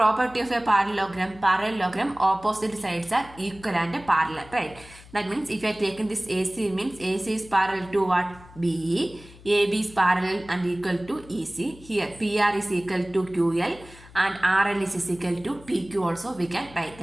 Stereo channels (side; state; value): left; noise; hum, 21 dB below the sound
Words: of a parallelogram? Parallelogram, opposite sides are equal and parallel, right? That means if you are taking this AC means AC is parallel to what? BE, AB is parallel and equal to EC. Here PR is equal to QL and RL is equal to PQ also we can write.